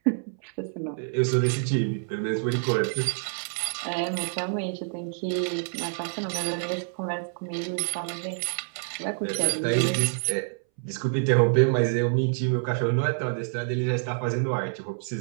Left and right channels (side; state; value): left; silent; 60 dB below the other